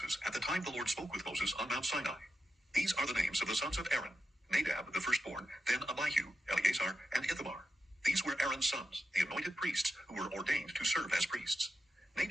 at the time the Lord spoke with Moses on Mount Sinai. These are the names of the sons of Aaron: Nadab the firstborn, then Abihu, Eleazar, and Ithamar. These were Aaron's sons, the anointed priests, who were ordained to serve as priests.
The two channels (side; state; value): both; normal; correlation 0.88